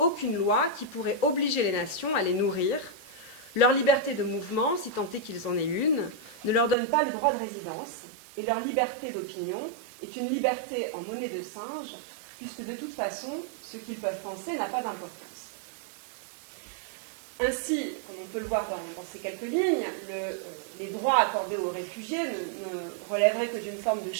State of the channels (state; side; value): drops out; left; at 6.8 s